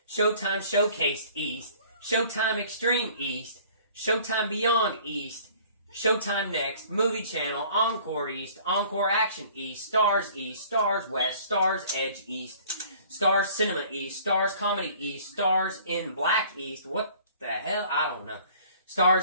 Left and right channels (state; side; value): inverted; both; correlation -0.52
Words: Showtime Showcase East, Showtime Extreme East, Showtime Beyond East, Showtime Next, Movie Channel, Encore East, Encore Action East, Stars East, Stars West, Stars Edge East, Stars Cinema East, Stars Comedy East, Stars in Black East, what the hell? I don't know.